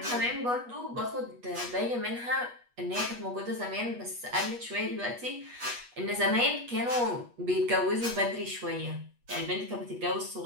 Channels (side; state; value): left; late; 8.3 ms